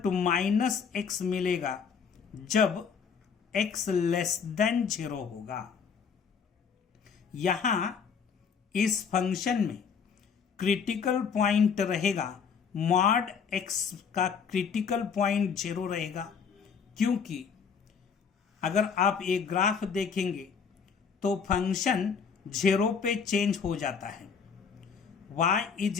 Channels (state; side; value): quieter; right; 6.3 dB